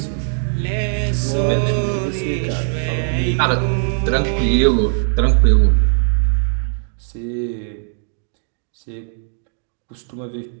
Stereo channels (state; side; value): silent; left; digital silence